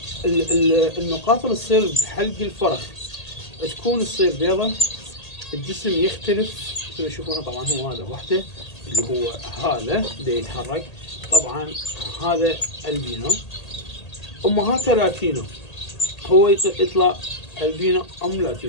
النقاط اللي تصير بحلق الفرخ تصير بيضة، الجسم يختلف مثل ما تشوفونه. طبعا هو هذا وحده اللي هو هذا دا يتحرك. طبعا هذا البينو، امهاته لاتينو، هو يطلع البينو ام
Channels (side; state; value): right; late; 1.8 ms